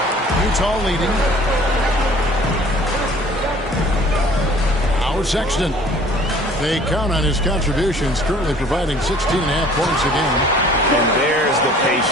Utah leading. Sexton. They count on his contributions, currently providing 16.5 points a game. And there's the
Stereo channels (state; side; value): normal; both; correlation 0.52